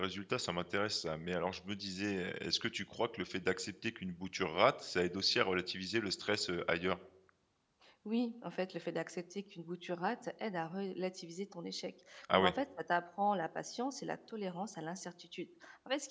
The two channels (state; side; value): identical; both; correlation 1.00